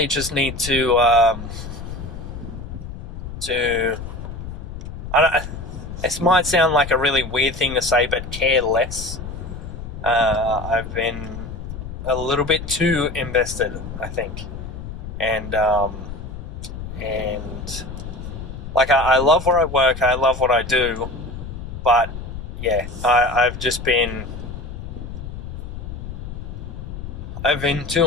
just need to this might sound like a really weird thing to say, but care less. I've been a little bit too invested, I think. And I love where I work, I love what I do, but I've been too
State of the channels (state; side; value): noise; left; rumble, 9 dB below the sound